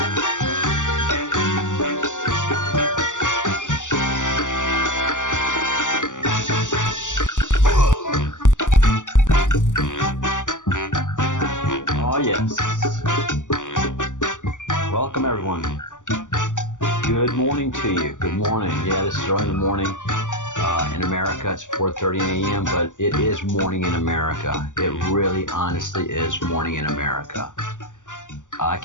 Oh yes. Welcome everyone. Good morning to you. Good morning. Yeah, this is early in the morning in America. It's 4:30 a.m., but it is morning in America. It really, honestly is morning in America. I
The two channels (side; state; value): right; late; 0.86 ms